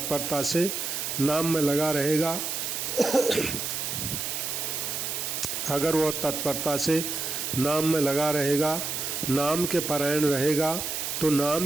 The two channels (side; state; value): right; noise; hiss, 3 dB below the sound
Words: से नाम में लगा रहेगा अगर वह तत्परता से नाम में लगा रहेगा, नाम के परायण रहेगा, तो